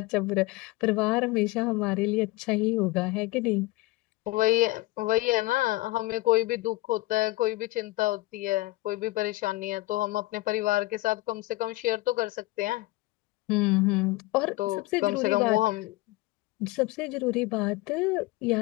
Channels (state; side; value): quieter; right; 20.0 dB